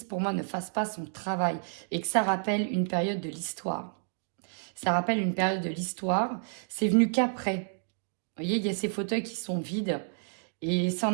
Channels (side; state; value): left; silent; digital silence